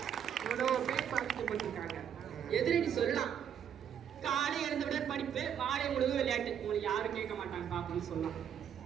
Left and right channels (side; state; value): left; quieter; 8.8 dB